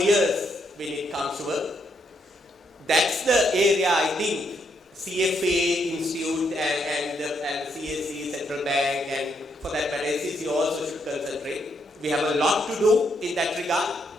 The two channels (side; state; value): both; normal; correlation 0.76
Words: when it comes to work. That's the area I think CFA Institute and CSE Central Bank and for that matter SEC also should concentrate. We have a lot to do in that regard.